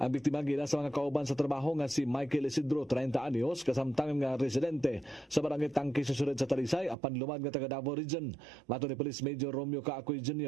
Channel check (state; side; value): drops out; left; at 7.0 s